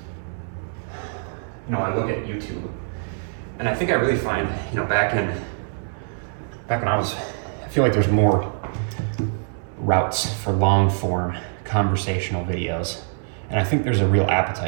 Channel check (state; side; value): silent; left; 63 dB below the other